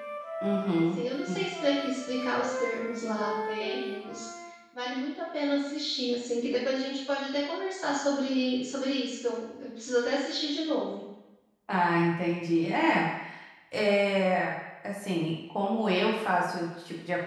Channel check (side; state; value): both; identical; correlation 1.00